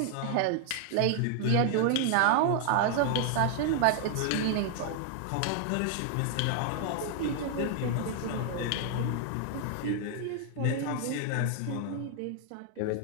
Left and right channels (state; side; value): different; both; correlation 0.00